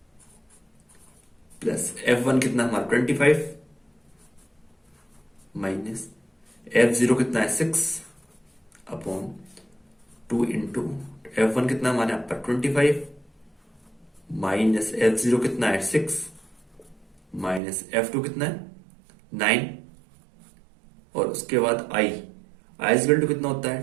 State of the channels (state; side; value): drops out; left; at 17.6 s